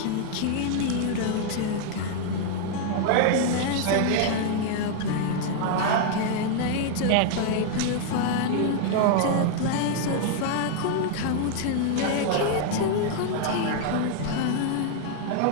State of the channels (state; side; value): different; both; correlation 0.00